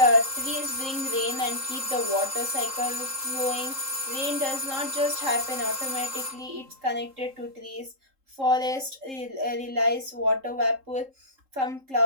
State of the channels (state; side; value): late; left; 3.7 ms